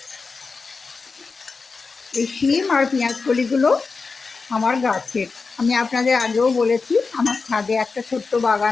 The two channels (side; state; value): right; quieter; 4.5 dB